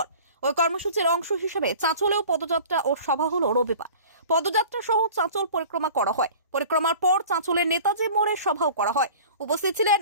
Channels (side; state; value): both; inverted; correlation -0.43